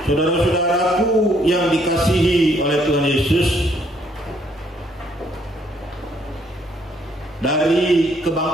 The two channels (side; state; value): both; normal; correlation 0.67